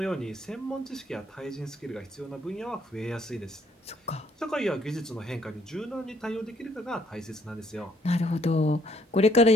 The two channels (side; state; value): both; normal; correlation 0.67